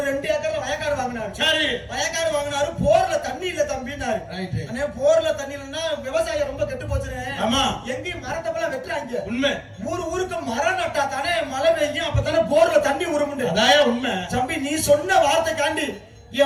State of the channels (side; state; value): both; identical; correlation 1.00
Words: 2 ஏக்கர்ல வயக்காடு வாங்கினாரு. சரி, வயக்காடு வாங்கினாரு. போர்ல தண்ணி இல்ல தம்பினாரு. போர்ல தண்ணி இல்லைன்னா விவசாயம் ரொம்ப கெட்டு போச்சுன்னு. ஆமா, எங்கேயும் மரத்தப்பெல்லாம் வெட்டுறாங்க. உண்மை. ஊருக்கு மரம் நட்டா தானே மழை பெய்யும், அப்பதானே போர்ல தண்ணி உருமுண்டு. அதான் உண்மை. தம்பி, நீ சொன்ன வார்த்தைக்காண்டி